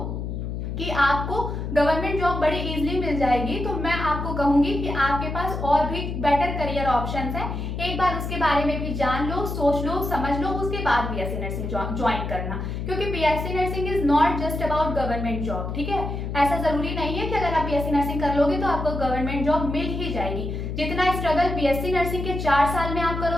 कि आपको गवर्नमेंट जॉब बड़ी इजीली मिल जाएगी, तो मैं आपको कहूंगी कि आपके पास और भी बेटर करियर ऑप्शंस हैं। एक बार उसके बारे में भी जान लो, सोच लो, समझ लो, उसके बाद बीएससी नर्सिंग ज्वाइन करना। क्योंकि BSc nursing is not just about government job, ठीक है। ऐसा जरूरी नहीं है कि अगर आप बीएससी नर्सिंग कर लोगे तो आपको गवर्नमेंट जॉब मिल ही जाएगी। जितना स्ट्रगल बीएससी नर्सिंग के 4 साल में आप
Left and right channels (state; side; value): noise; left; hum, 4 dB below the sound